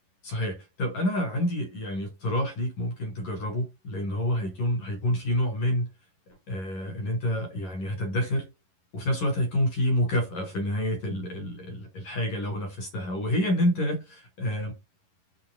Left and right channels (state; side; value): late; right; 11 ms